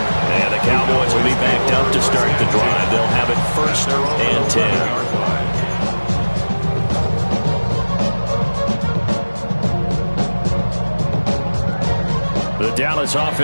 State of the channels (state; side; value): inverted; both; correlation -1.00